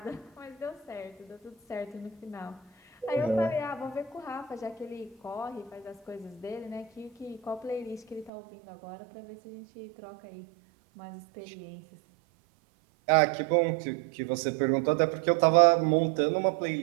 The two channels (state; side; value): drops out; left; at 8.3 s